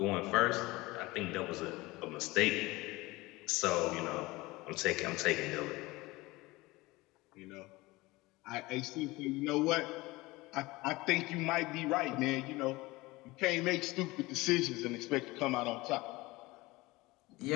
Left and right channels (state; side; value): quieter; right; 21.2 dB